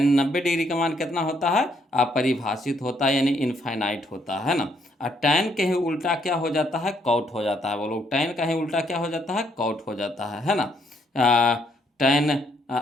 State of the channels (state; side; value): normal; both; correlation 0.71